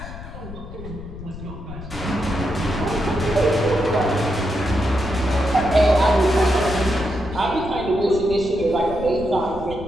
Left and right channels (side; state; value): left; noise; rumble, 12 dB below the sound